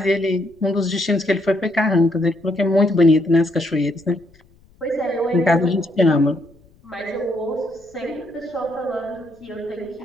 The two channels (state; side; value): noise; left; rumble, 30 dB below the sound